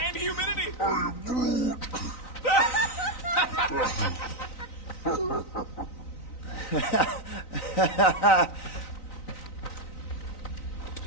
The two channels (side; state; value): right; late; 3.9 ms